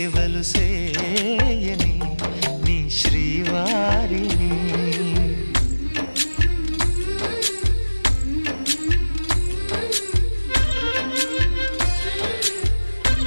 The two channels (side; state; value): both; inverted; correlation -1.00